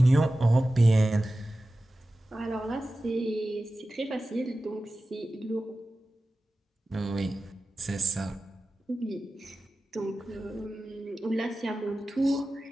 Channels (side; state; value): both; normal; correlation 0.95